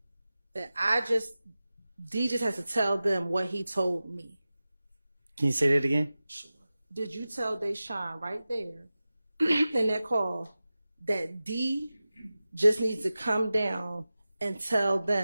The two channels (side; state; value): both; inverted; correlation -0.95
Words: that D just has to tell them what he told me? Can you say that again? Did you tell Deshaun right there in that call that D just needs to come down and tell